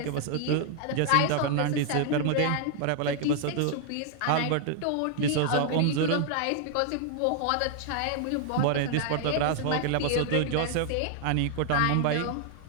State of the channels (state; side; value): different; both; correlation 0.00